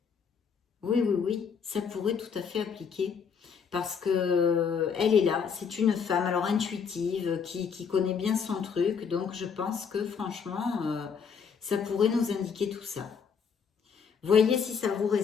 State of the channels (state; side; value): quieter; right; 6.4 dB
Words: Oui, oui, oui, ça pourrait tout à fait appliquer. Parce que elle est là, c'est une femme, alors intuitive, qui connaît bien son truc. Donc je pense que franchement, ça pourrait nous indiquer tout ça. Voyez si ça vous